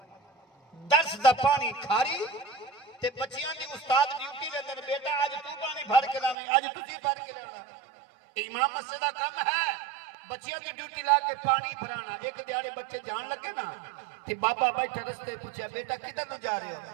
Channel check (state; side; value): drops out; left; at 6.4 s